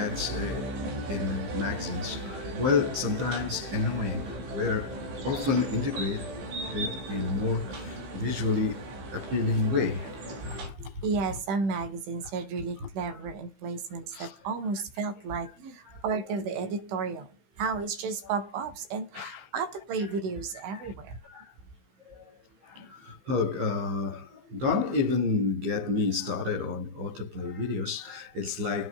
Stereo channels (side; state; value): left; late; 15 ms